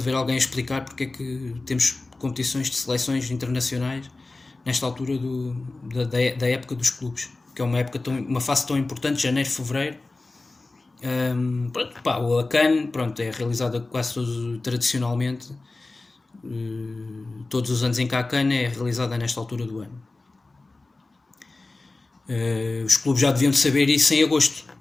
ver alguém explicar, porque é que temos competições de seleções internacionais nesta altura da época dos clubes, que é uma fase tão importante, janeiro, fevereiro. A CAN, pronto, é realizada quase tradicionalmente, todos os anos em que há a CAN é realizada nesta altura do ano. Os clubes já deviam de saber isso em agosto,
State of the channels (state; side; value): quieter; right; 3.3 dB